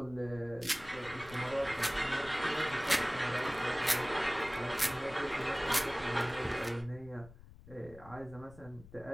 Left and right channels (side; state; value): left; noise; rumble, 19 dB below the sound